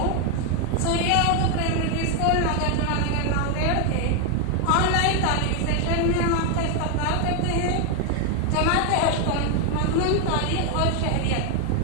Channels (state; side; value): different; both; correlation 0.01